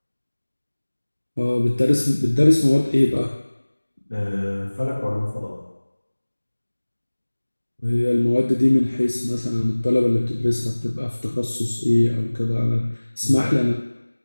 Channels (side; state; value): both; inverted; correlation -1.00